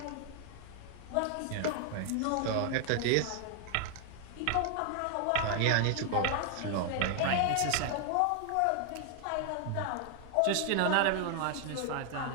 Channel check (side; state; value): both; different; correlation 0.00